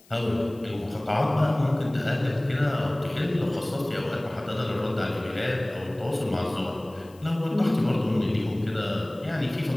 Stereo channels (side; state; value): left; noise; hiss, 28 dB below the sound